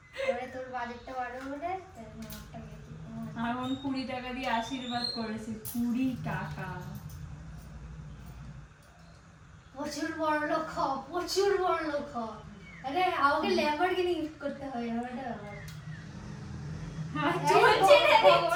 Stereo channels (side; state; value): both; identical; correlation 1.00